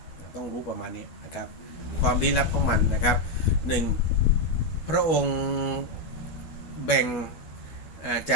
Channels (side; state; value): right; late; 12 ms